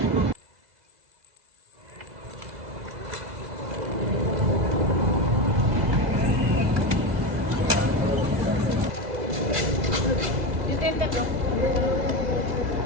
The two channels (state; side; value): late; left; 2.0 ms